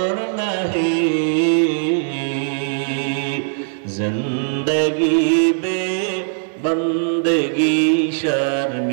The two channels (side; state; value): left; silent; 61 dB below the other